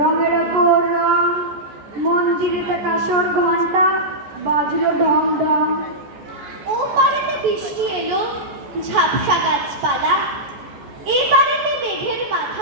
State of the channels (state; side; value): late; left; 14 ms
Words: ওপর রং। মন্দিরেতে কাসর ঘন্টা বাজলো ঢং ঢং। ও পারেতে বৃষ্টি এলো, ঝাপসা গাছপালা, এই পারেতে মেঘের